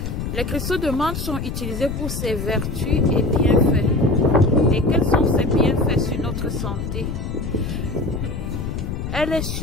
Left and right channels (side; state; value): left; noise; rumble, 5 dB below the sound